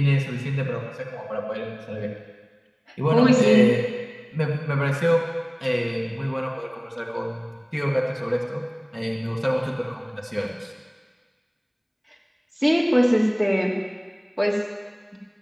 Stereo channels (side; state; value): both; identical; correlation 1.00